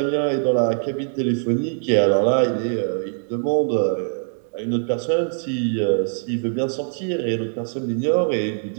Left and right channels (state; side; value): silent; left; digital silence